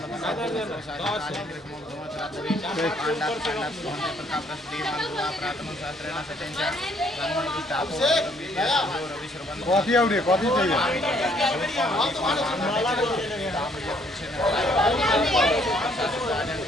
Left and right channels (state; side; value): normal; both; correlation 0.65